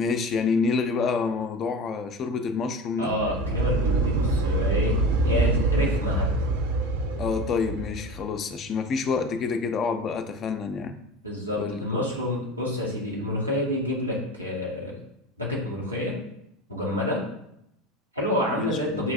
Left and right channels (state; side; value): normal; both; correlation 0.31